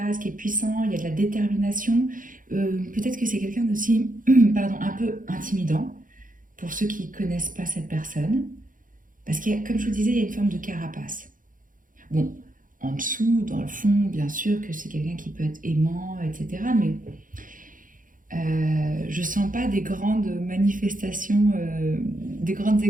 qui est puissant, il y a de la détermination. Peut-être que c'est quelqu'un aussi un peu intimidant pour ceux qui ne connaissent pas cette personne. Parce que, comme je vous disais, il y a une forme de carapace. Bon, en dessous, dans le fond, bien sûr que c'est quelqu'un qui peut être aimant, etc. Mais je ne sens pas des grandes manifestations, des grandes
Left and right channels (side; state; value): left; late; 0.39 ms